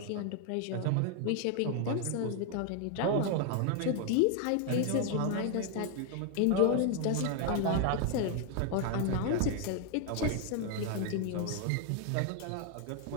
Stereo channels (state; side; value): different; both; correlation 0.01